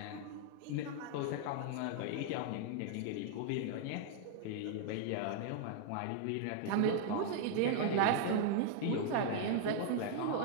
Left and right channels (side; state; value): both; different; correlation 0.00